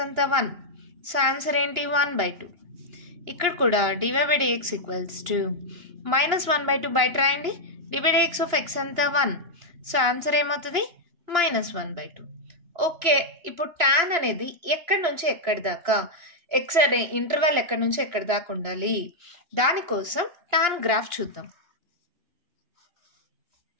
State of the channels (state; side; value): late; left; 2.9 ms